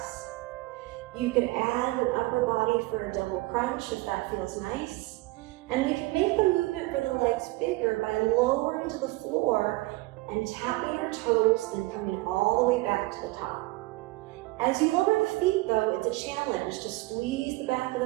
You could add an upper body for a double crunch if that feels nice. And we can make the movement for the legs bigger by lowering to the floor and tapping our toes, then coming all the way back to the top. As you lower the feet though, it's a challenge to squeeze the back of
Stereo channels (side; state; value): left; quieter; 21.3 dB